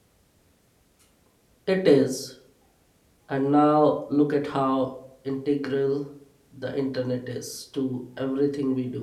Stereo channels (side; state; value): both; identical; correlation 1.00